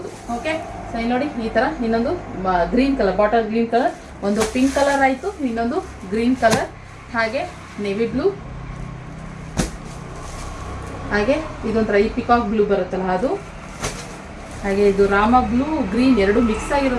ಓಕೆ, ಸೊ ಇಲ್ಲಿ ನೋಡಿ, ಈ ತರ ಇನ್ನೊಂದು green colour, bottle green colour, ಒಂದು ಪಿಂಕ್ ಕಲರ್ ಆಯ್ತು, ಇನ್ನೊಂದು ಗ್ರೀನ್ ಕಲರ್, ಹಾಗೆ ನೇವಿ ಬ್ಲೂ, ಹಾಗೆ ಇದೊಂಥರ ಈ ಪಿಕಾಕ್ ಬ್ಲೂ ಬರುತ್ತಲ್ಲ ಅದು, ಹಾಗೆ ಇದು ರಾಮ ಬ್ಲೂ ಗ್ರೀನ್ ಎರಡು ಮಿಕ್ಸ್ ಆಗಿರೋ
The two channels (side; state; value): both; identical; correlation 1.00